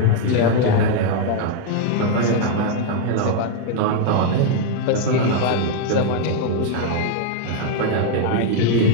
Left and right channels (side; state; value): both; different; correlation 0.00